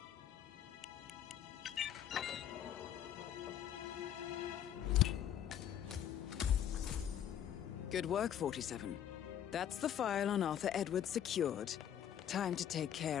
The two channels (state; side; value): quieter; right; 10.0 dB